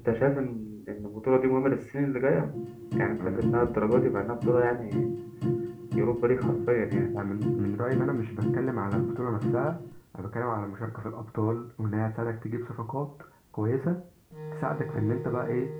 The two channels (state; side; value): identical; both; correlation 1.00